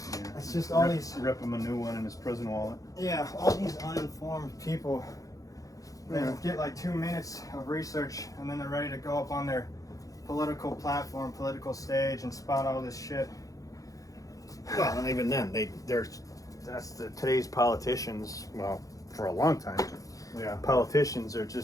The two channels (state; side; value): late; right; 0.17 ms